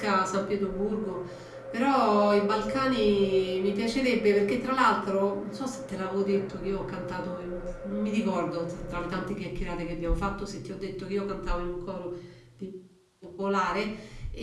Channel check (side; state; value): both; identical; correlation 1.00